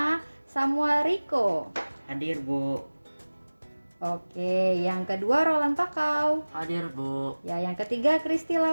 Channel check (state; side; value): inverted; both; correlation -1.00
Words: Samuel Rico. Hadir, Bu. Oke, yang kedua Roland Pakau. Hadir, Bu. Ya, yang ketiga Kristi